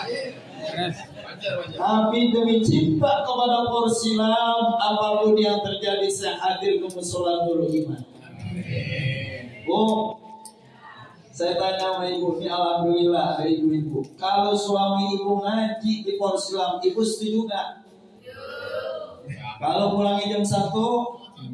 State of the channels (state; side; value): identical; both; correlation 1.00